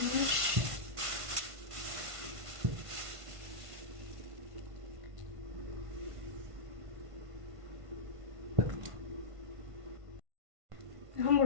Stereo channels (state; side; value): late; left; 1.5 ms